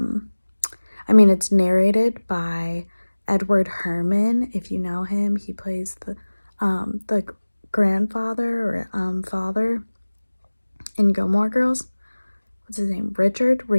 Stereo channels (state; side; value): inverted; both; correlation -1.00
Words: it's narrated by Edward Herman. If you know him, he plays the grandfather or father in Gilmore Girls. What's his name?